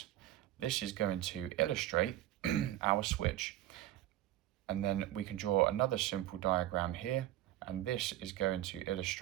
This is going to illustrate our switch. And then we can draw another simple diagram here, and this is going to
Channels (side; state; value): left; quieter; 14.1 dB